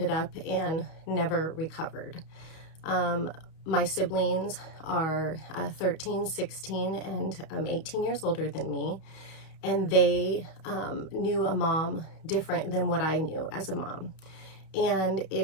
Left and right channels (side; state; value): right; late; 31 ms